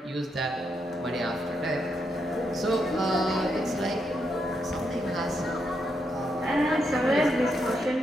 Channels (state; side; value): normal; both; correlation 0.81